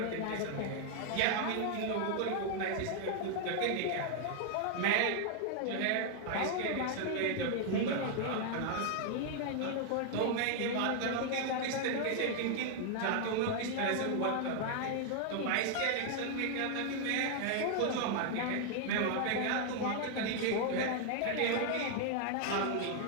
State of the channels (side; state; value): both; different; correlation 0.00